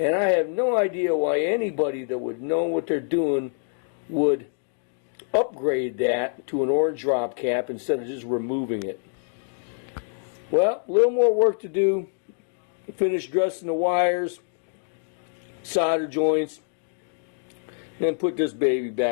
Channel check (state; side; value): silent; right; digital silence